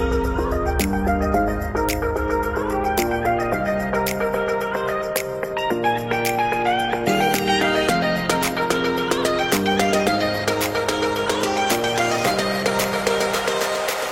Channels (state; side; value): identical; both; correlation 1.00